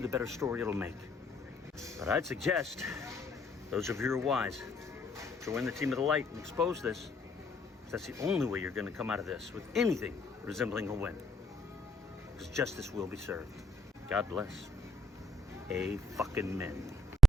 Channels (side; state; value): both; normal; correlation 0.71